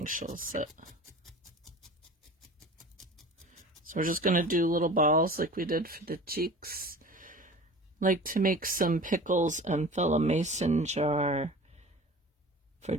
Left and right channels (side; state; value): both; normal; correlation 0.39